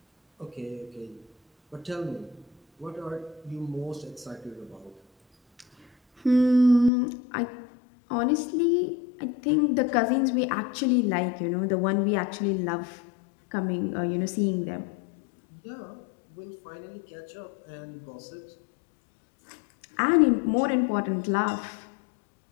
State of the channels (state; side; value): drops out; right; at 6.9 s